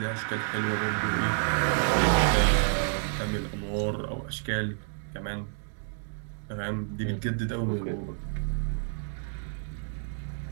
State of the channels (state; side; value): silent; left; 58 dB below the other